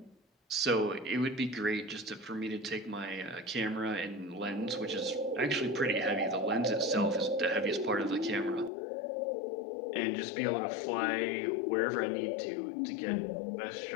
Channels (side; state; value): right; drops out; at 8.7 s